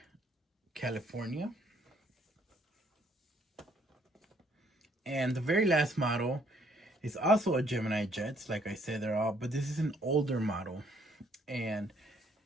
California. And the very last model is also a Gemini Jet. Like I said, they're all, but this is an older model. And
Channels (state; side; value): normal; both; correlation 0.66